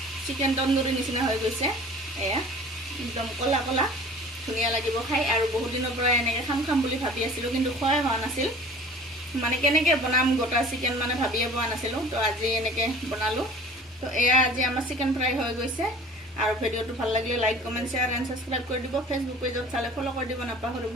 চিকেন তন্দুৰী নিচিনা হৈ গৈছে এয়া একদম কলা কলা ধুনীয়া লাগিব খাই আৰু বহুত দিনৰ পৰা এনেকৈ খাম বুলি ভাবি আছিলোঁ কিন্তু খোৱাই হোৱা নাছিল মানে কেনেকৈ বনাম গোটা চিকেন মানে ভাবিয়ে পোৱা নাছিলোঁ তো আজি এনেকৈ বনালোঁ তো এয়া আজি আমাৰ চিকেন ফ্ৰাই হৈ গৈছে আৰু ভিডিঅ'টো ভাল লাগিলে like comment share and subscribe কৰি দিব ফেচবুক পেজত চালে ফ'ল' কৰি দিব নাপাহৰিব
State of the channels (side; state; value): both; normal; correlation 0.45